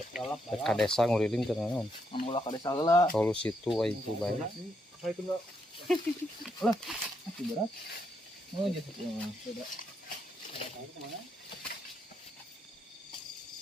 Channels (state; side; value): normal; both; correlation 0.78